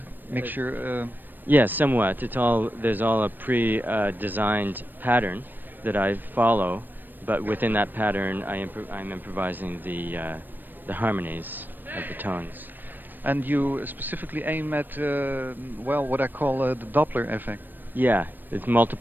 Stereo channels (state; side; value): late; left; 0.092 ms